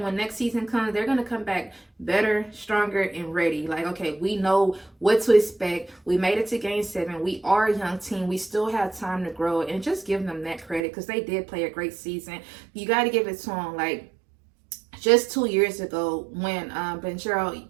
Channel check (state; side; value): drops out; left; at 10.8 s